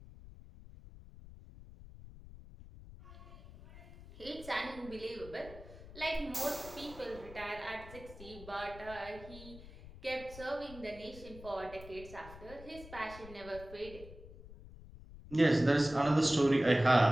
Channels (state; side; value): noise; left; rumble, 17 dB below the sound